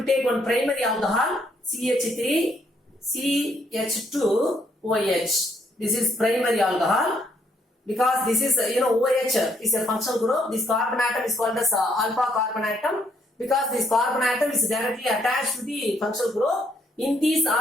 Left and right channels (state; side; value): normal; both; correlation 0.71